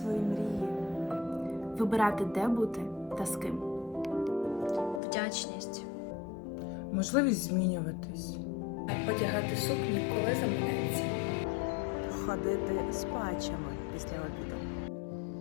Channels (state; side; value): drops out; right; at 5.0 s